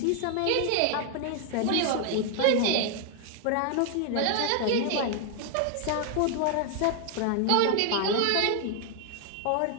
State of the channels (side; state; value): both; different; correlation 0.00